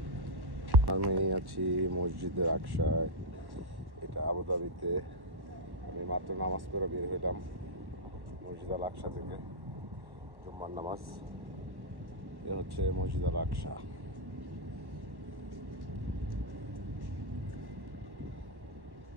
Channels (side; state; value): left; late; 1.1 ms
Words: আমি আছি মসজিদের আকসায়। এটা আবুধাবিতে। আমি মাত্র নামাজ পড়ে বের হইলাম মসজিদ আল আকসা থেকে। জুম্মার নামাজ। এ হচ্ছে মসজিদ আল আকসা।